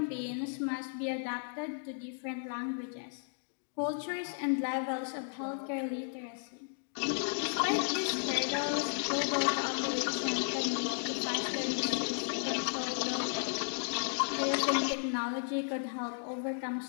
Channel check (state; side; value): silent; right; digital silence